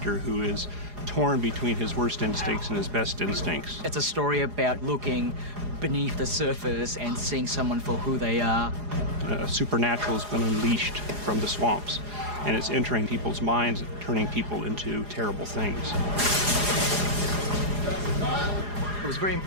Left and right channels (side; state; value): left; late; 4.9 ms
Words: who is torn between his worst instincts and his best instincts. It's a story about looking beneath the surface and seeing someone for who they are. Supernatural has been unleashed from the swamps, and it's entering people's minds, turning people into terrible things. It was very